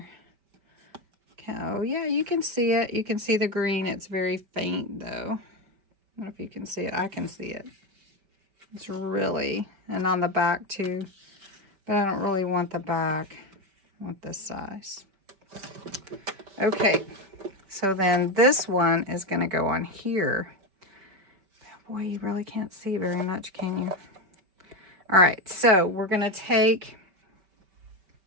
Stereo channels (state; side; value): late; left; 5.2 ms